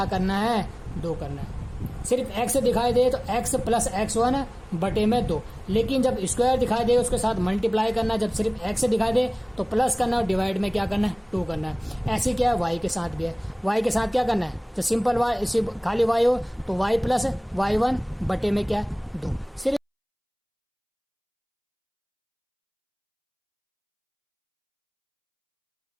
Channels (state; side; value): identical; both; correlation 1.00